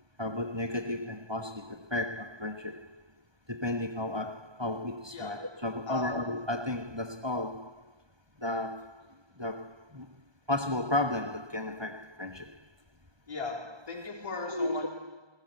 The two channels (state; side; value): late; left; 1.2 ms